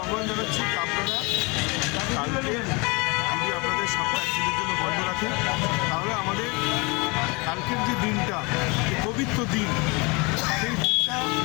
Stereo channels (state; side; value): quieter; right; 28.0 dB